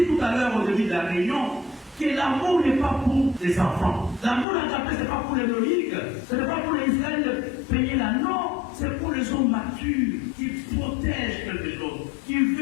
tout à l'heure au début de la réunion que l'amour n'est pas pour les enfants. L'amour agapé, ce n'est pas pour les loïcs. Ce n'est pas pour les Israël payer la non. C'est pour les hommes matures qui protègent quelque chose, qui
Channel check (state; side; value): drops out; right; at 4.5 s